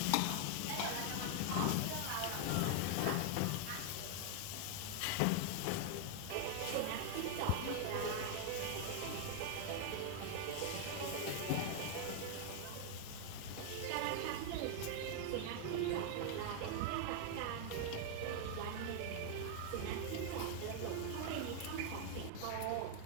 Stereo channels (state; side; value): different; both; correlation 0.00